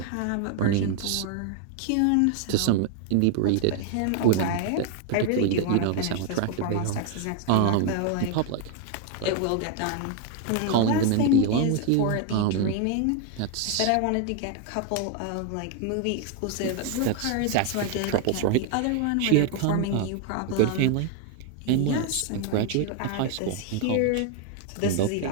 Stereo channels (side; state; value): both; different; correlation 0.00